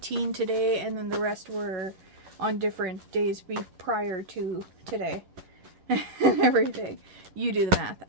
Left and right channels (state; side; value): late; left; 11 ms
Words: today, and then the rest were on different days prior to today and everything. You do the math.